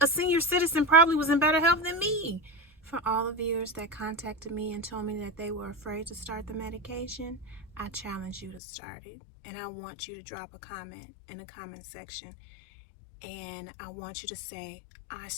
a senior citizen probably was in better health than me. For all the viewers that contacted me and told me that they were afraid to start the medication, I challenge you to start it. And I want you to drop a comment in the comment section. And I want you to say, I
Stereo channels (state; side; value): drops out; right; at 8.6 s